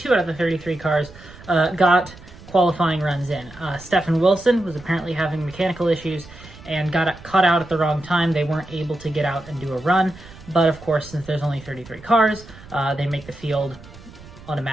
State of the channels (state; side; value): noise; right; rumble, 19 dB below the sound